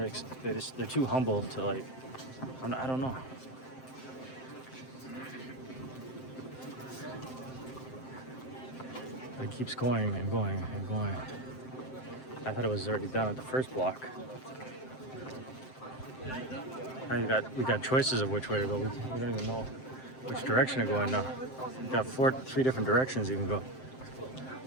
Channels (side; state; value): right; late; 7.7 ms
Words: too humble to like. I don't know. But it keeps going and going and going. I thought it was already done at the first block. Now we got choices of which way to go. We don't even know which direction to go in now. We got three different directions you can go.